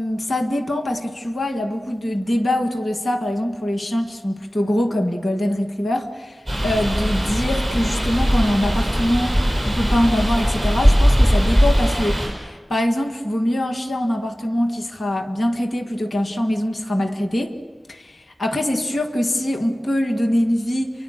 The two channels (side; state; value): both; normal; correlation 0.97